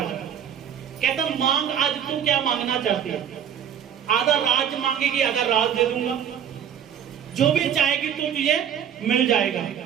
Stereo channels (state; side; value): quieter; left; 8.9 dB